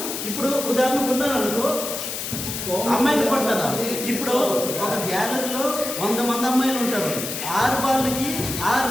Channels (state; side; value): noise; left; hiss, 5 dB below the sound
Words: ఇప్పుడు ఉదాహరణకు ఉన్నారు అనుకో, అమ్మాయిలు పడతారా? ఇప్పుడు ఒక గ్యాలరీలో 100 మంది అమ్మాయిలు ఉంటారు. 6 బాల్కి 6